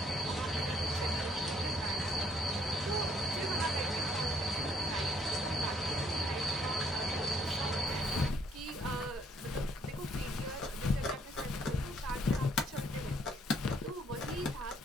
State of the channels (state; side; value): normal; both; correlation 0.67